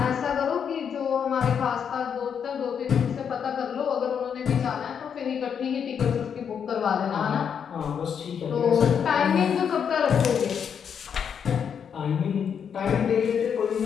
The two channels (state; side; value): quieter; right; 7.5 dB